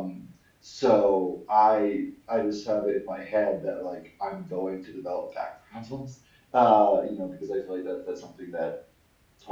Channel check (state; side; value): identical; both; correlation 1.00